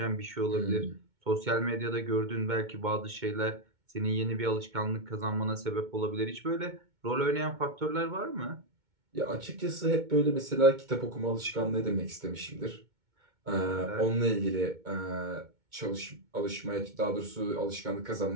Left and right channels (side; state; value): left; late; 2.2 ms